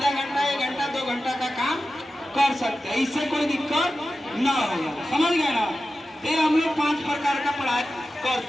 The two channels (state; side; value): normal; both; correlation 0.93